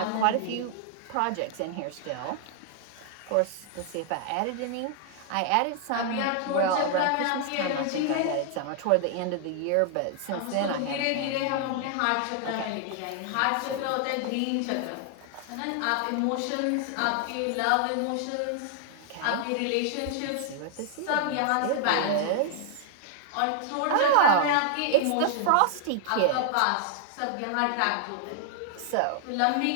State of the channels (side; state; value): both; different; correlation 0.00